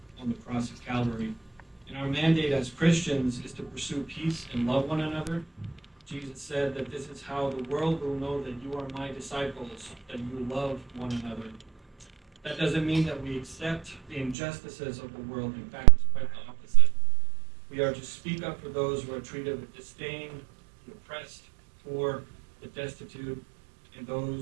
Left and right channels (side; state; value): left; drops out; at 14.4 s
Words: on the cross of Calvary. And our mandate as Christians is to pursue peace and love one another. Jesus said that this is how the world will know that you are my disciples, that you love one another. That doesn't mean that we accept the injustices of the world. In fact, it's quite the opposite. We are to speak up for those who are treated with disdain, the oppressed, poor, the destitute, and